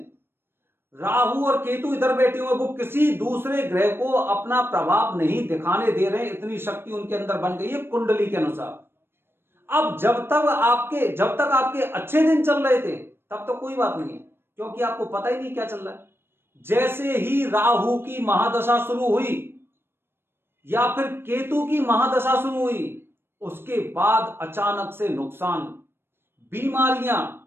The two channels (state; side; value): late; left; 0.11 ms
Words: राहु और केतु इधर बैठे हुए, वो किसी दूसरे ग्रह को अपना प्रभाव नहीं दिखाने दे रहे, इतनी शक्ति उनके अंदर बन गई है कुंडली के अनुसार। अब जब तक आपके अच्छे दिन चल रहे थे तब तो कोई बात नहीं है, क्योंकि आपको पता ही नहीं क्या चल रहा है। जैसे ही राहु की महादशा शुरू हुई या फिर केतु की महादशा शुरू हुई, उसके बाद अचानक से नुकसान, बीमारियां,